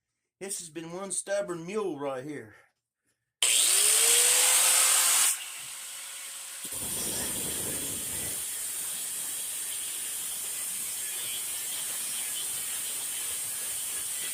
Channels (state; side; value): identical; both; correlation 1.00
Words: This has been one stubborn mule right here.